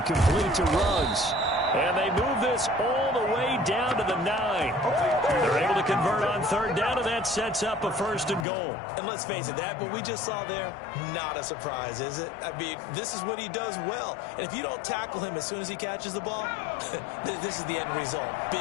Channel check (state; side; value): drops out; right; at 8.5 s